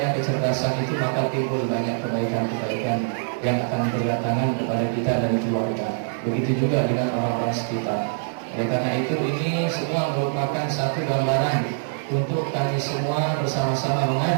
kecerdasan itu, maka timbul banyak kebaikan-kebaikan yang akan berdatangan kepada kita dan keluarga. Begitu juga dengan orang-orang sekitar. Oleh karena itu, ini semua merupakan satu gambaran untuk kami semua bersama-sama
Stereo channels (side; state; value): left; silent; digital silence